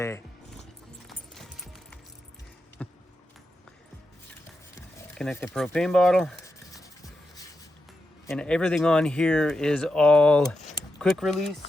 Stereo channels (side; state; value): both; normal; correlation 0.87